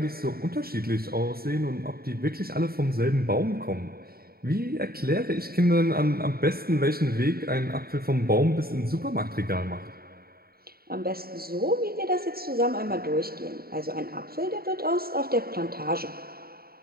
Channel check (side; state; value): left; late; 0.44 ms